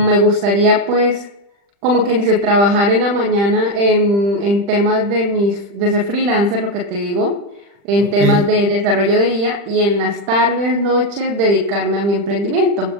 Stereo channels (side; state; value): left; late; 40 ms